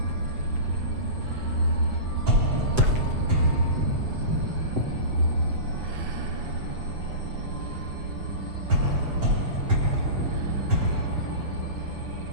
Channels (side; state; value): left; late; 7.9 ms